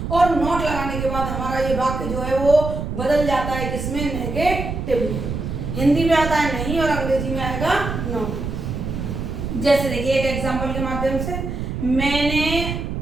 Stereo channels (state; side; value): noise; right; rumble, 4 dB below the sound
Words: और नॉट लगाने के बाद हमारा ये वाक्य जो है वो बदल जाता है किसमें नेगेटिव। हिंदी में आता है नहीं और अंग्रेजी में आएगा नॉट। जैसे देखिए एक एग्जांपल के माध्यम से, मैंने